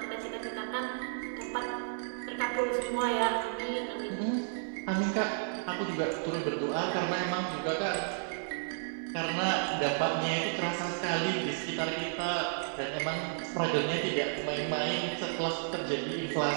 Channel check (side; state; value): left; silent; digital silence